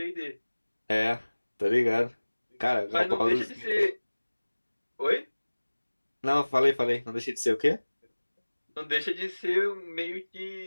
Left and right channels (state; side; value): inverted; both; correlation -1.00